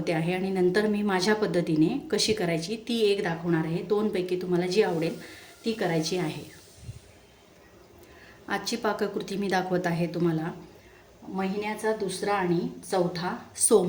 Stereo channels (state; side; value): identical; both; correlation 1.00